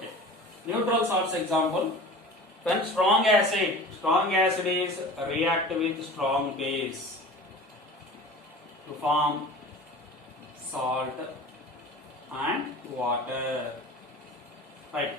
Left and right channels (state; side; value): normal; both; correlation 0.38